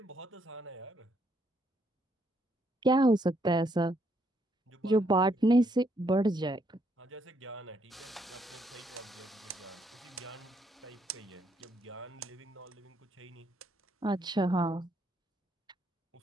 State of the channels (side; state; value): both; normal; correlation 0.73